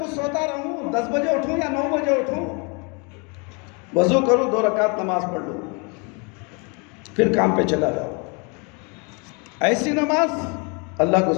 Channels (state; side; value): quieter; right; 32.9 dB